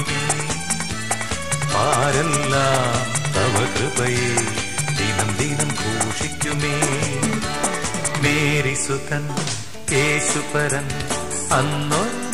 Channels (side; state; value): both; identical; correlation 1.00